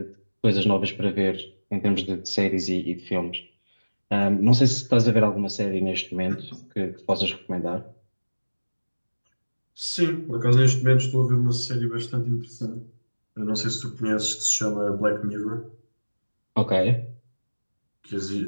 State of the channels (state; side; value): inverted; both; correlation -1.00